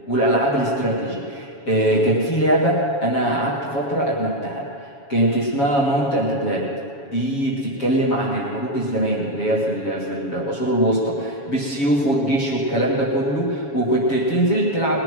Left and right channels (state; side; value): late; right; 7.2 ms